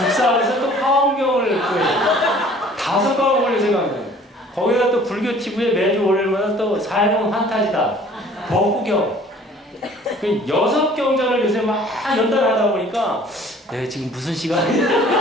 또 화엄경을 구해요. 5과목을 요새 강좌. 거기다 또 불교 TV에 매주 월요일마다 또 삶은 환타지다. 법구경. 6경전을 요새 막 연달하다 보니까 지금 무슨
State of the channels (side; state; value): both; normal; correlation 0.52